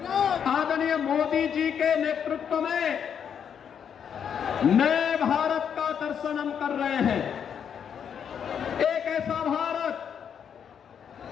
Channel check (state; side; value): quieter; right; 7.9 dB